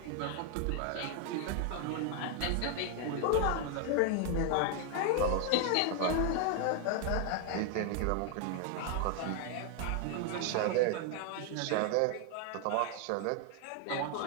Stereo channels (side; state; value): both; different; correlation 0.00